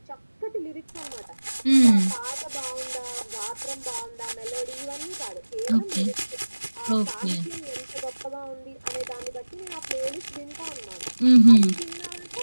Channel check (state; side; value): inverted; both; correlation -1.00